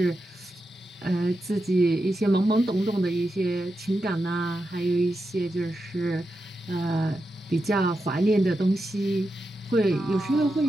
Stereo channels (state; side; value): normal; both; correlation 0.88